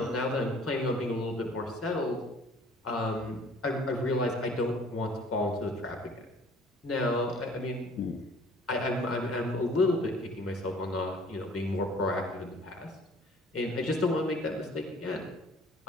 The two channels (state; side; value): normal; both; correlation 0.53